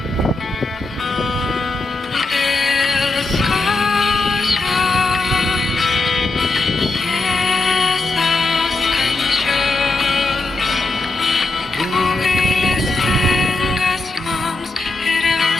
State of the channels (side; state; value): right; quieter; 3.1 dB